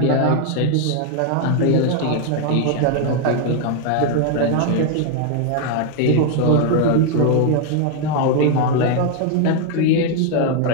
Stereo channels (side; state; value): both; different; correlation 0.00